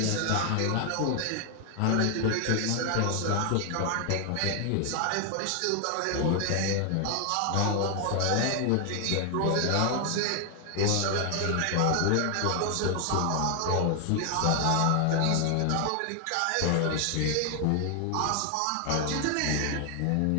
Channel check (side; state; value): both; different; correlation 0.00